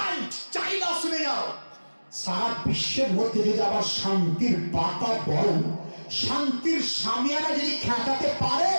China শুনে যাও, সারা বিশ্বের মধ্যে যদি আবার শান্তির বাতাবরণ, শান্তির সামিয়ানা যদি খেটাতে পারে,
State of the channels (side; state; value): both; inverted; correlation -1.00